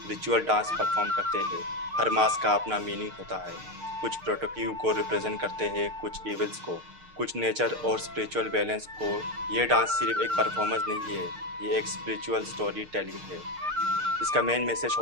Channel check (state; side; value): late; left; 6.6 ms